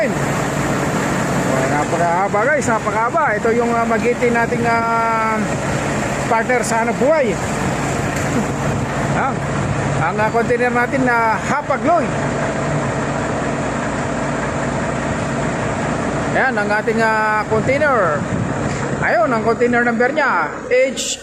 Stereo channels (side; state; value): both; identical; correlation 1.00